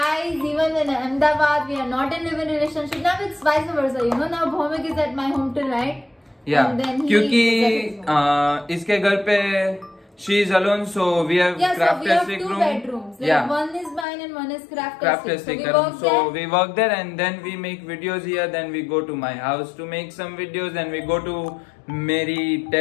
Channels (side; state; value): right; drops out; at 14.1 s